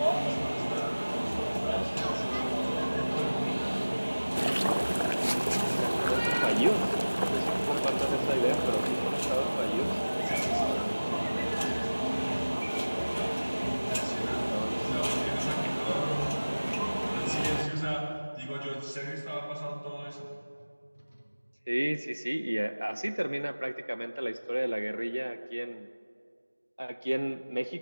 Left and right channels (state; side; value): inverted; both; correlation -1.00